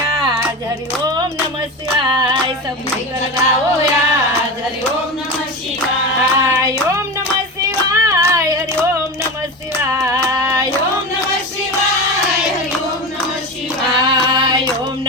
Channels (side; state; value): both; normal; correlation 0.25